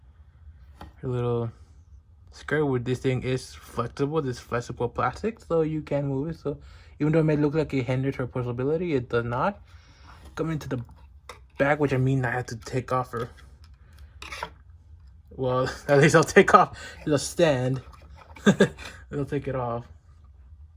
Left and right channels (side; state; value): both; identical; correlation 1.00